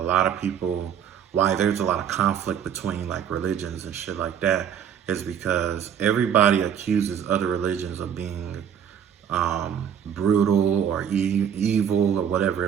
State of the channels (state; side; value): quieter; left; 8.6 dB